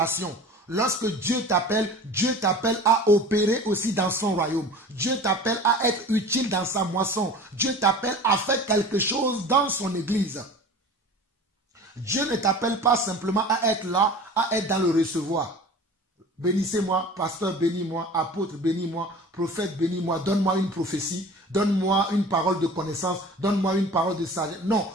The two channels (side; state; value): both; normal; correlation 0.40